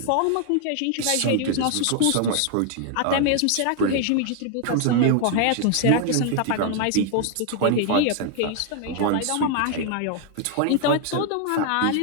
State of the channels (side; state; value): both; different; correlation 0.01